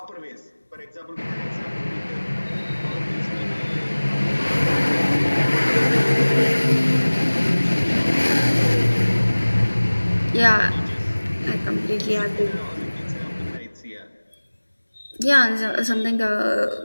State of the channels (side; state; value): both; inverted; correlation -1.00